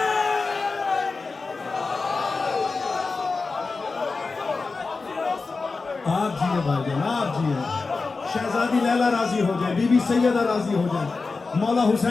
آپ جیئے بھائی جان آپ جیئے شہزادی لیلا راضی ہو جائے بی بی سیدہ راضی ہو جائے مولا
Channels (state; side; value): quieter; right; 4.1 dB